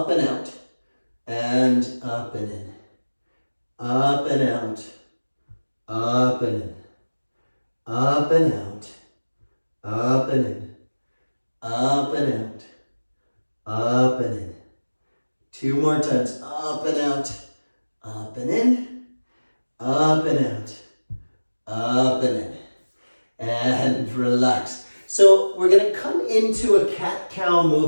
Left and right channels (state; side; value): inverted; both; correlation -1.00